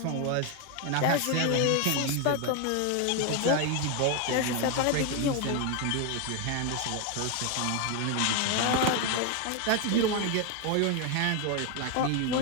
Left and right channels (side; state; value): both; different; correlation 0.01